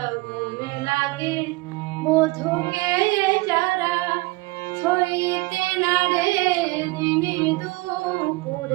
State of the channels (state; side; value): quieter; left; 22.5 dB